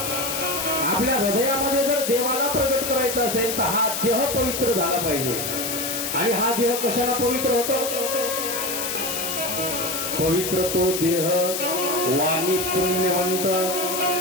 आपल्या हृदयामध्ये जर देवाला प्रगट करायचं असेल तर हा देह पवित्र झाला पाहिजे. आणि हा देह कशाला पवित्र होतो? पवित्र तो देह वाणी पुण्यवंत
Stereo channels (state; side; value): noise; left; hiss, 3 dB below the sound